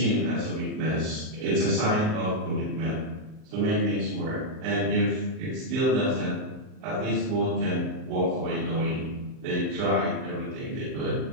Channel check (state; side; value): late; left; 38 ms